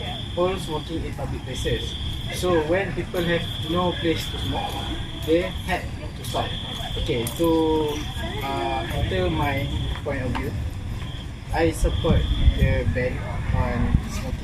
all smoking in public places. So when people have no place to smoke, they had to stop. Okay, to enter my point of view, I support the ban on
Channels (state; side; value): identical; both; correlation 1.00